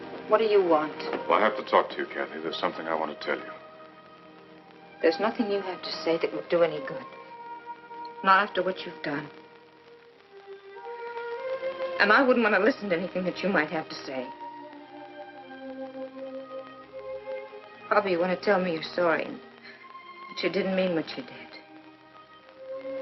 What do you want? Well, I have to talk to you, Kathy. There's something I want to tell you. There's nothing you have to say that would do any good. Not after what you've done. And I wouldn't want to listen to anything that you might have to say. Probably you want to tell me you're sorry and that you didn't mean what you did.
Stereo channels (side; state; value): both; identical; correlation 1.00